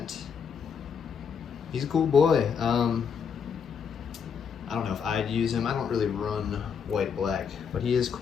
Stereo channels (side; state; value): right; quieter; 6.7 dB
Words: He's a cool boy. I don't know if I'd use him. I don't really run white-black, but he is